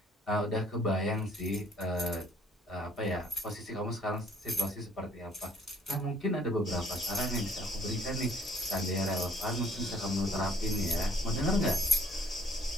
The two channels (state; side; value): normal; both; correlation 0.60